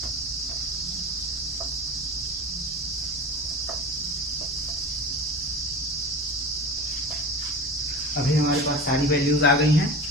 अभी हमारे पास सारी वैल्यूज आ गई हैं।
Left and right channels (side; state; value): both; normal; correlation 0.33